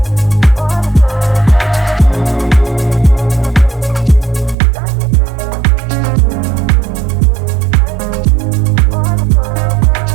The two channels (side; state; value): left; drops out; at 4.5 s